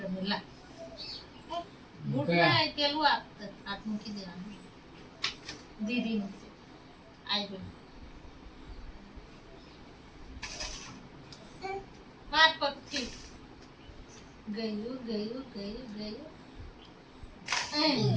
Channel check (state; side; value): identical; both; correlation 1.00